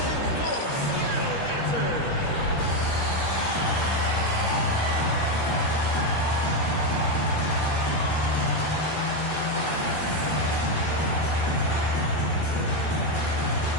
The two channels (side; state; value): right; late; 14 ms